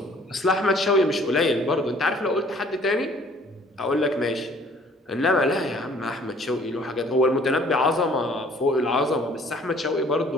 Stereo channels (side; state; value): both; normal; correlation 0.56